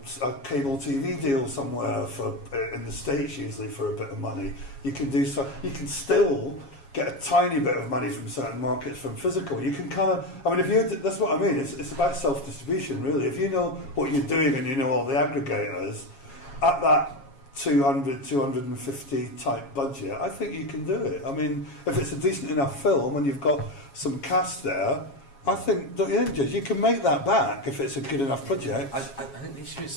a cable TV deal somewhere in the States usually for a bit of money. You can still get a tiny bit of money from certain markets from physical. You can kind of, I mean, that's what I mean. It's about self-distribution, really. If you know what you're doing and you know all the aggregators, at that 200, 250 type budget, I think you can do it. I mean, if it's a decent enough film and you've got some cast there, I think, don't you think, Jez, you can make that back if it's a good enough project. I think the issue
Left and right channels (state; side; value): late; right; 7.3 ms